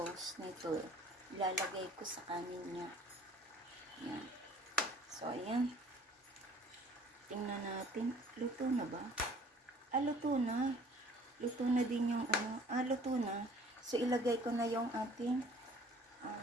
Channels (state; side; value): normal; both; correlation 0.53